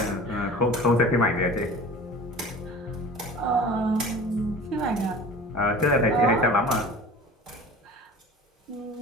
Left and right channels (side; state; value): both; normal; correlation 0.40